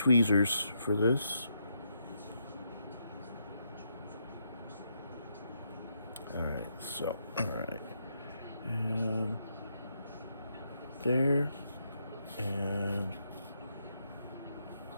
for this. All right, so all right, and there, and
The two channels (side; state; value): both; inverted; correlation -0.79